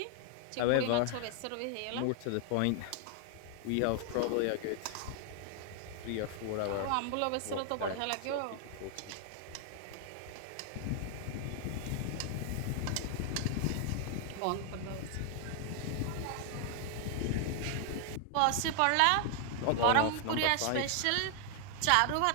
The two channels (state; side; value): different; both; correlation 0.00